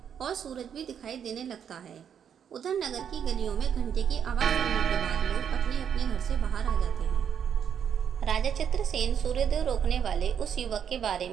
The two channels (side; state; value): left; quieter; 8.2 dB